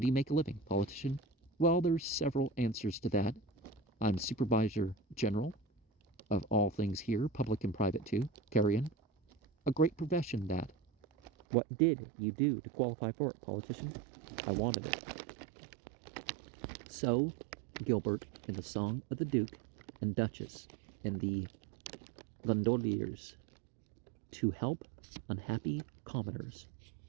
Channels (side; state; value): left; drops out; at 11.3 s